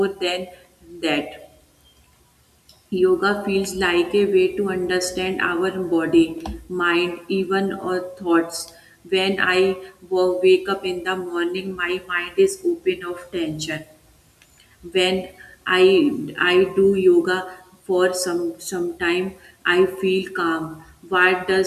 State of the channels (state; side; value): identical; both; correlation 1.00